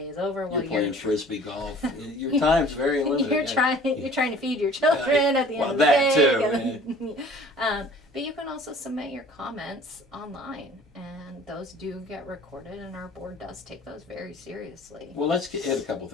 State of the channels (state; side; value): normal; both; correlation 0.49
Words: is over. You're playing frisbee golf. Your time's very limited. You're trying to feed your children at the end of the day. Too. But you can also submit your comments online, and those do get recorded, and our board does take those very seriously. Well, let's hit a couple